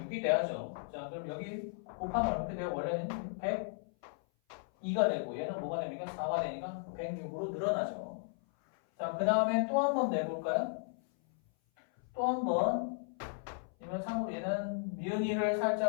돼야죠. 자, 그럼 여기 곱하면 이렇게 돼요. 원래는 102가 되고 얘는 뭐가 됩니까? 4가 되니까 106으로 늘어나죠. 자, 그 다음에 또 한 번 내볼까요? 또 한 번. 이번 참고로 얘는 미은이를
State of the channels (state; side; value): silent; right; 54 dB below the other